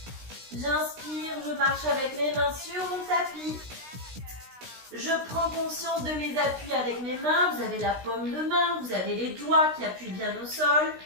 J'inspire, je marche avec mes mains sur mon tapis. Je prends conscience de mes appuis avec mes mains. Vous avez la paume de main, vous avez les doigts qui appuient bien au sol.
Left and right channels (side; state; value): left; late; 16 ms